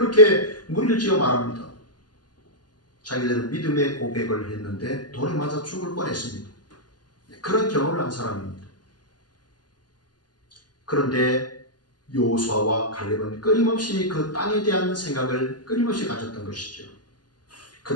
무리를 지어 말합니다. 자기들은 믿음의 고백을 했는데 돌에 맞아 죽을 뻔했습니다. 그런 경험을 한 사람입니다. 그런데 여호수아와 갈렙은 끊임없이 그 땅에 대한 생각을 끊임없이 가졌던 것이죠.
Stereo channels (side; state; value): right; late; 0.70 ms